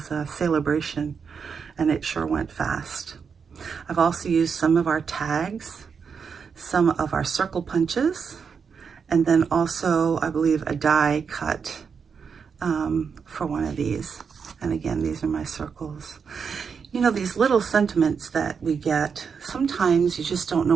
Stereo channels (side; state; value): left; quieter; 6.1 dB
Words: a celebration and it sure went fast. I've also used some of our tags, some of our circle punches, and then also, I believe, a die cut for one of these. And again, these are my circles. You know, these little sentiments that we get, sometimes you just don't know